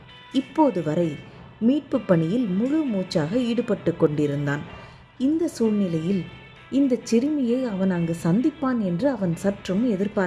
இப்போது வரை மீட்பு பணியில் முழு மூச்சாக ஈடுபட்டு கொண்டிருந்தான். இந்த சூழ்நிலையில் இந்த சிறுமியை அவன் அங்கு சந்திப்பான் என்று அவன் சற்றும்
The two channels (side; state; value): both; identical; correlation 1.00